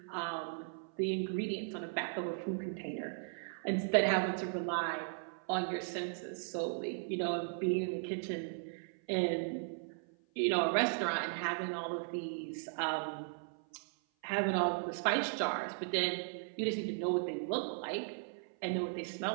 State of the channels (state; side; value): silent; left; 53 dB below the other